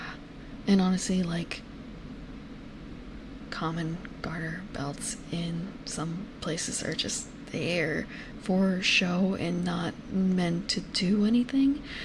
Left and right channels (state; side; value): identical; both; correlation 1.00